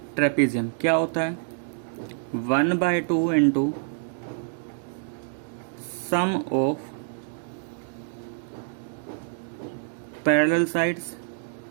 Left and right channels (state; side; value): silent; left; digital silence